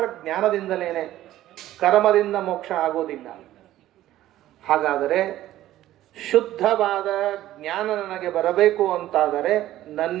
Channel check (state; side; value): quieter; left; 14.1 dB